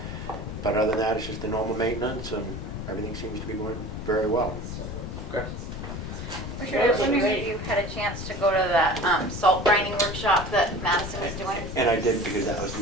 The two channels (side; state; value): left; noise; rumble, 7 dB below the sound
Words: But other than that, it's just the normal maintenance, and everything seems to be going very well. Okay. Richard, I was wondering if you had a chance to go to that salt grinding workshop that Madison was doing. And I did, because that was